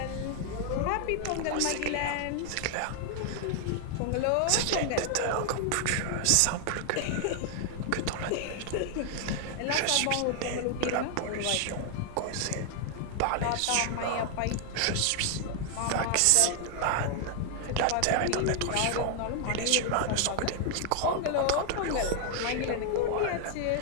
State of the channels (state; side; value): different; both; correlation 0.00